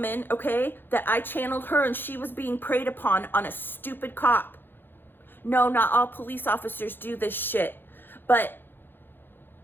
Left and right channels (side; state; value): right; late; 0.099 ms